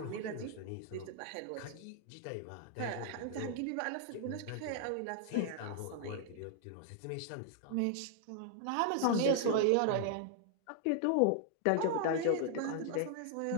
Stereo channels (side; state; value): both; different; correlation 0.00